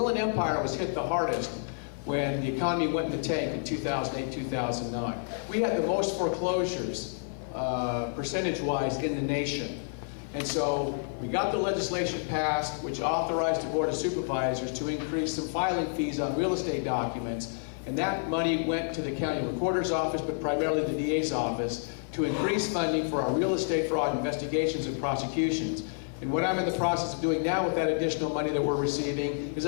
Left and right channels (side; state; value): right; silent; 58 dB below the other